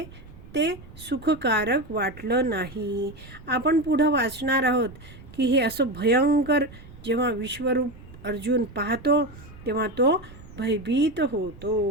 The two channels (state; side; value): noise; right; rumble, 19 dB below the sound